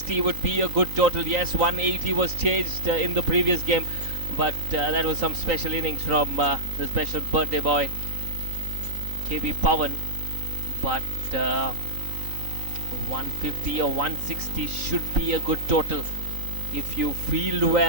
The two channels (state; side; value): late; left; 3.9 ms